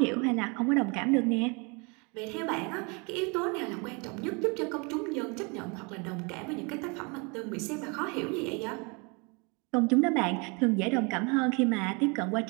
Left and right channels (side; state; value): left; quieter; 31.0 dB